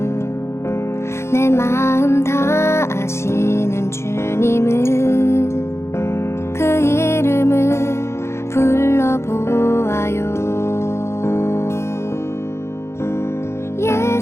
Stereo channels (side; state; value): right; late; 0.13 ms